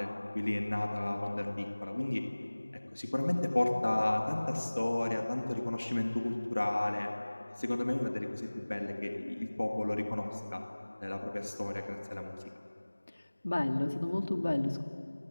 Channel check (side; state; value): both; inverted; correlation -1.00